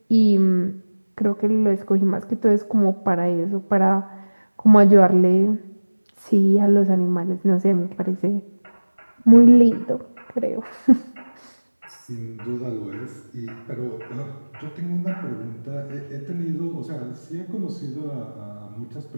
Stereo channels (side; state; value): both; inverted; correlation -1.00